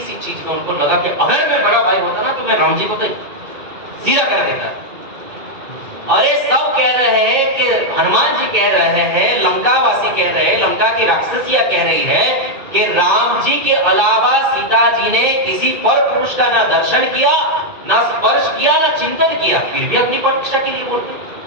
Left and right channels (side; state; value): left; late; 2.5 ms